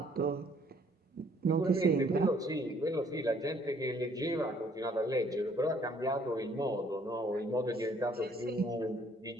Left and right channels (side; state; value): both; normal; correlation 0.62